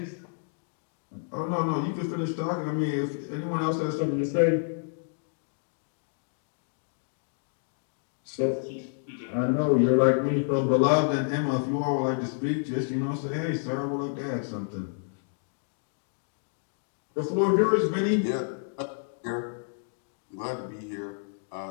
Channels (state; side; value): silent; right; digital silence